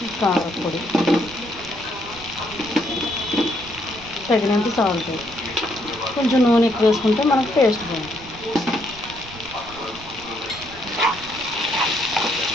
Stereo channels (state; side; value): noise; right; rumble, 18 dB below the sound